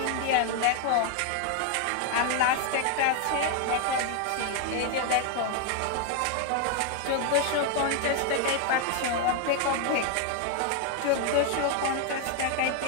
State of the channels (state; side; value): different; both; correlation 0.01